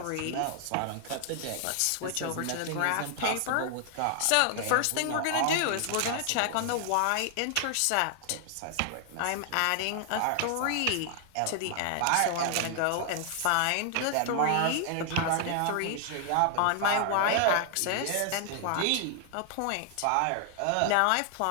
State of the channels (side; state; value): both; different; correlation 0.00